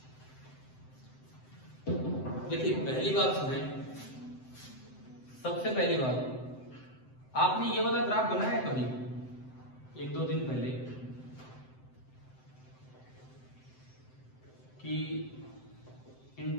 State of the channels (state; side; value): late; right; 7.8 ms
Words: देखिए पहली बात सुने, सबसे पहली बात, आपने ये वाला ग्राफ बनाया है कभी 1-2 दिन पहले कि